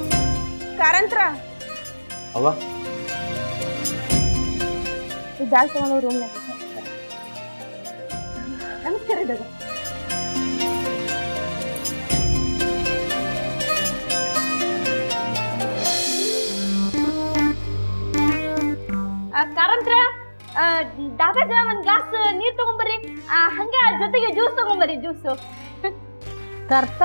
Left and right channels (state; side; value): inverted; both; correlation -1.00